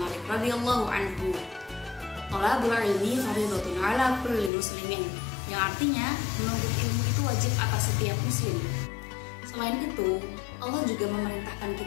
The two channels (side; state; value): right; drops out; at 4.5 s